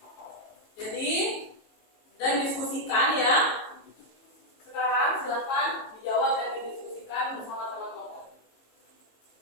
Jadi dan diskusikan ya. Sekarang silakan dijawab dan didiskusikan bersama teman kelompok.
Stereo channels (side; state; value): right; late; 18 ms